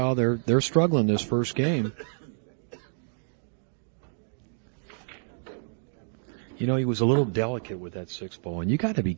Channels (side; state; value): left; silent; digital silence